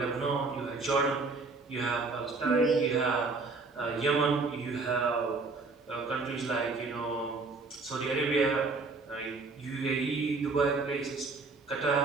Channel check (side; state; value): left; quieter; 3.9 dB